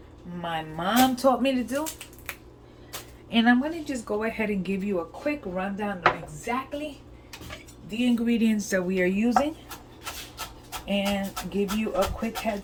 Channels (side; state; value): both; identical; correlation 1.00